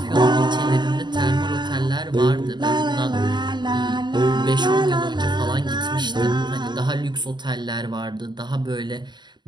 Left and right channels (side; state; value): left; late; 0.21 ms